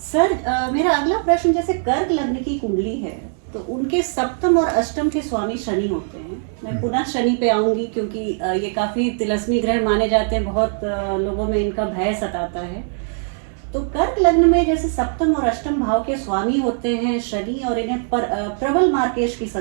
Sir, मेरा अगला प्रश्न, जैसे कर्क लग्न की कुंडली है तो उनके सप्तम और अष्टम के स्वामी शनि होते हैं। मैं पुनः शनि पे आऊंगी क्योंकि ये काफ़ी तिलस्मी ग्रह माने जाते हैं, बहुत लोगों में इनका भय सताता है। तो कर्क लग्न में जैसे सप्तम और अष्टम भाव के स्वामी होते हैं शनि, और इन्हें प्रबल मार्केश की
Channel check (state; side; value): silent; left; 65 dB below the other